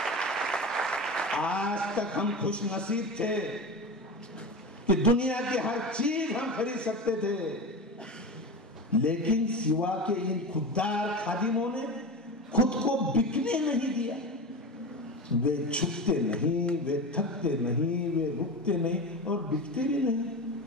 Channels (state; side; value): normal; both; correlation 0.25